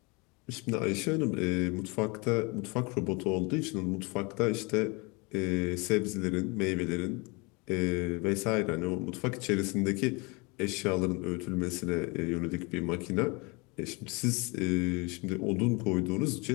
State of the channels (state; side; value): quieter; right; 28.4 dB